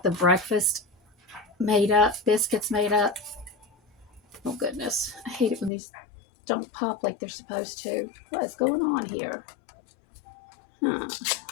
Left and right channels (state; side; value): drops out; right; at 5.7 s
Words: of breakfast made up, biscuits made up. Oh goodness, I hate it when these don't pop like they're supposed to. What is going on here?